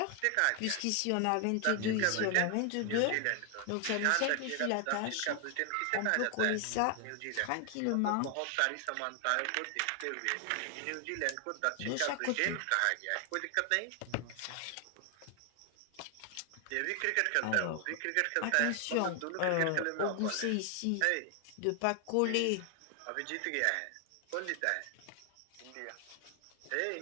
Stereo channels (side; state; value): both; different; correlation 0.00